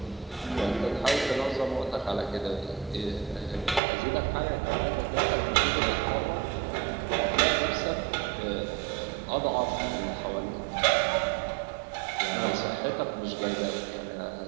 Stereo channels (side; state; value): left; drops out; at 3.8 s